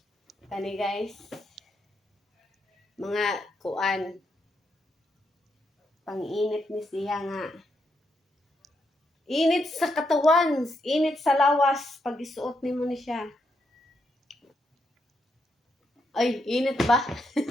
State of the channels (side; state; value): both; normal; correlation 0.80